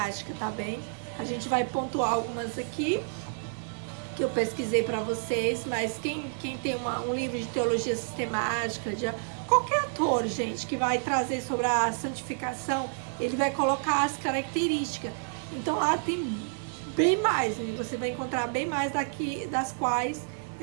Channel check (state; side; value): silent; left; digital silence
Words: tá bem? A gente vai pontuar algumas aqui que eu pesquisei para vocês, mas quem tem um livro de teologia sistemática, de qualquer autor, gente, que vai trazer sobre a santificação, ele vai colocar as características. Então lá tem bem mais, né? Você vai encontrar bem mais daqui, das quais